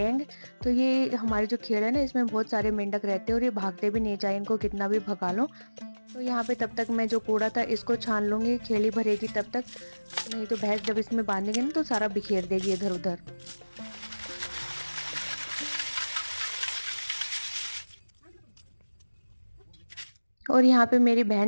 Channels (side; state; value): both; inverted; correlation -1.00